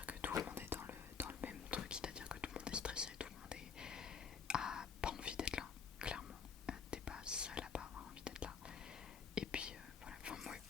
que tout le monde est dans le même truc, c'est-à-dire que tout le monde est stressé, tout le monde a pas envie d'être là, clairement. T'es pas seul à pas avoir envie d'être là. Et puis voilà, enfin moi,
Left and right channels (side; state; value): right; quieter; 6.4 dB